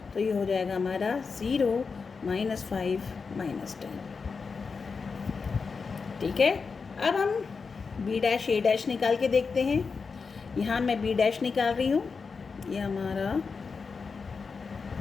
तो ये हो जाएगा हमारा 0, -5, -10। ठीक है। अब हम बी डैश ए डैश निकाल के देखते हैं। यहाँ मैं बी डैश निकाल रही हूँ, ये हमारा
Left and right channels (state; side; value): quieter; right; 5.0 dB